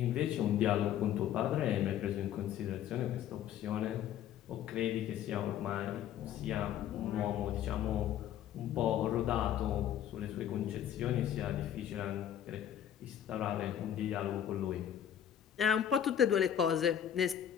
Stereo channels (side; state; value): right; quieter; 10.2 dB